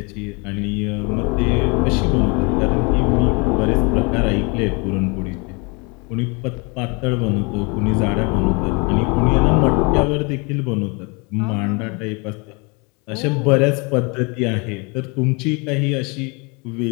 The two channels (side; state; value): right; quieter; 30.7 dB